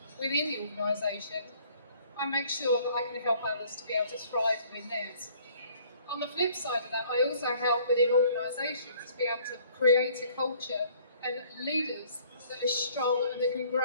within the organisation, I make sure that I can help others to be able to thrive within theirs. On the flip side of that, I also help within organisations to be able to create a culture and leaders that are strong and that can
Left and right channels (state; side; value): inverted; both; correlation -0.57